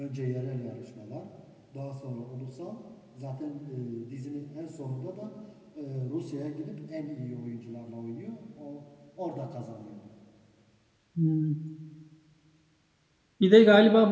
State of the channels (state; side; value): identical; both; correlation 1.00